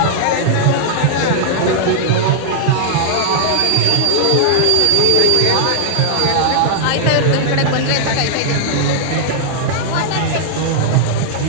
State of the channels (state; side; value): different; both; correlation -0.01